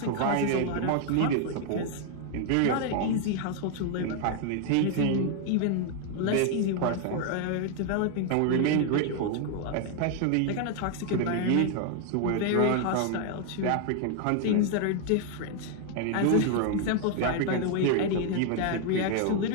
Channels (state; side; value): different; both; correlation 0.00